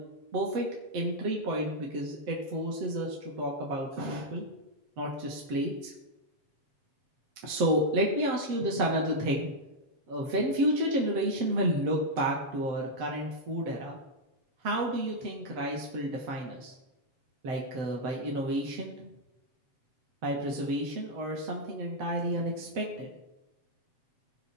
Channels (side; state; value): left; late; 7.8 ms